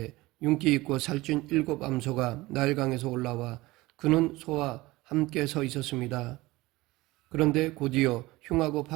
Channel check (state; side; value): quieter; left; 20.0 dB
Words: 윤기 있고 살찐 7 암소가 나일강에서 올라와 그는 소와 함께 서 있었습니다. 그런데 곧이어 흉하고